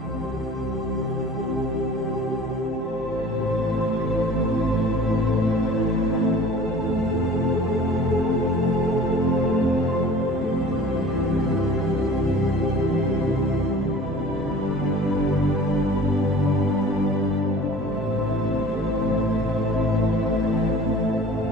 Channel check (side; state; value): both; normal; correlation 0.44